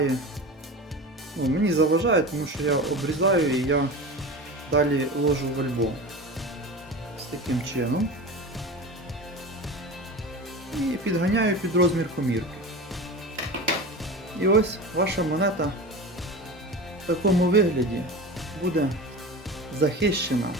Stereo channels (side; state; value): both; normal; correlation 0.30